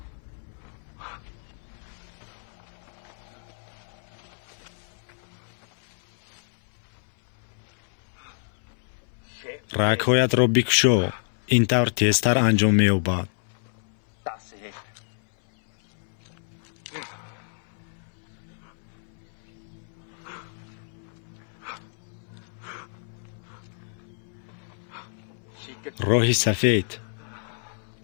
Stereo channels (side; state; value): right; silent; 59 dB below the other